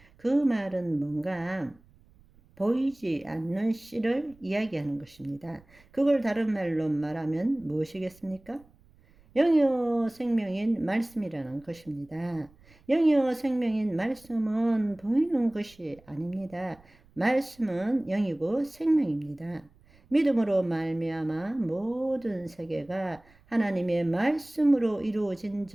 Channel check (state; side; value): noise; right; rumble, 28 dB below the sound